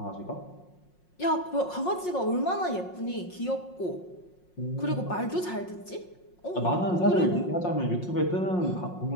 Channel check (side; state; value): right; late; 5.6 ms